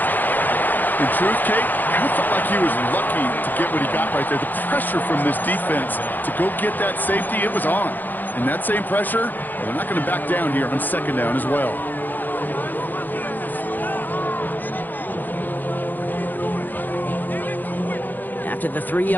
In truth, Kate, I felt like he was lucky to get what he got right there. The pressure from this defense to go get that safety, it was on. And that same pressure, well, they're not going to back down here on 2nd down as well. After the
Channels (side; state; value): right; late; 0.086 ms